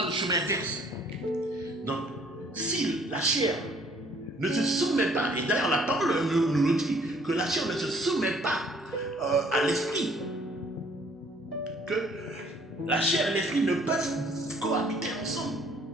le chemin inverse. Donc, si la chair ne se soumet pas, et d'ailleurs la parole nous le dit, que la chair ne se soumet pas à l'esprit, que la chair et l'esprit ne peuvent cohabiter ensemble.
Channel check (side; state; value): both; normal; correlation 0.60